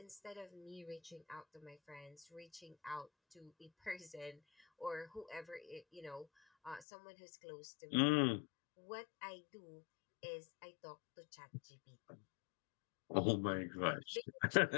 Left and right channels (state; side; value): drops out; right; at 6.9 s